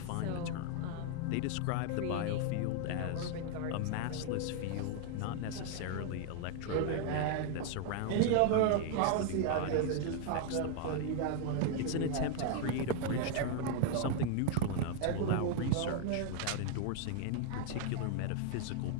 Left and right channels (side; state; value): both; different; correlation 0.00